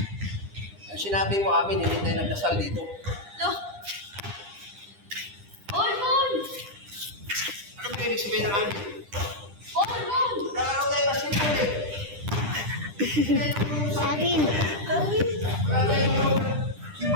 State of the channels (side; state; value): left; late; 9.9 ms